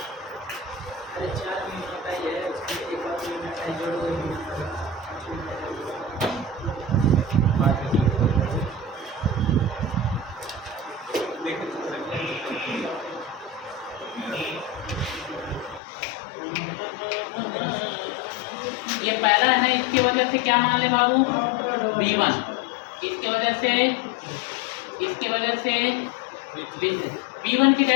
अरे 4 मिनट का ही है, उसमें एक और मिनट है जोड़ दो। ये पहला है ना, इसकी वजह से क्या मान ले बाबू, V1, इसके वजह से V1 की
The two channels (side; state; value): right; drops out; at 15.8 s